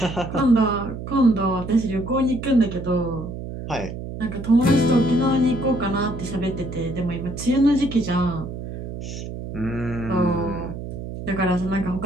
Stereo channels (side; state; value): right; noise; hum, 8 dB below the sound